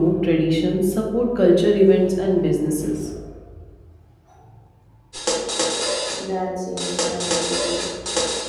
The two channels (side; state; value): both; identical; correlation 1.00